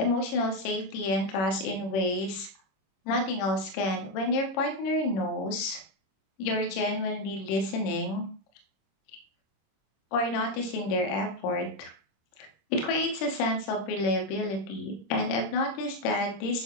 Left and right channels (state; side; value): late; right; 26 ms